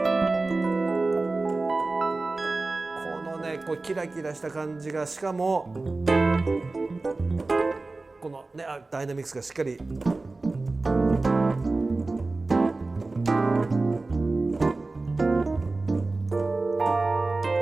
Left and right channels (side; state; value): left; quieter; 3.4 dB